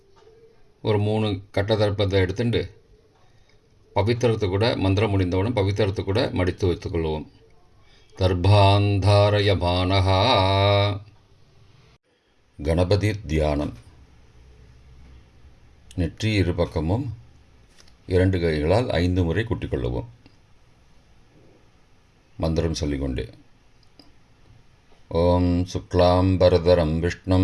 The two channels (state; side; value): identical; both; correlation 1.00